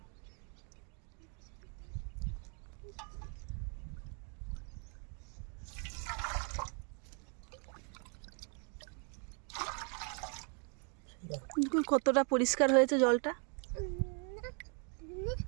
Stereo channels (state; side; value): quieter; left; 38.6 dB